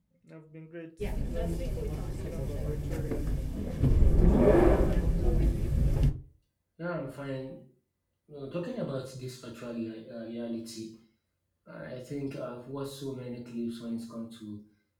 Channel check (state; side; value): identical; both; correlation 1.00